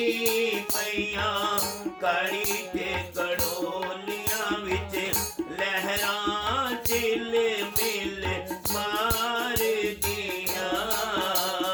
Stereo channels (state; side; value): identical; both; correlation 1.00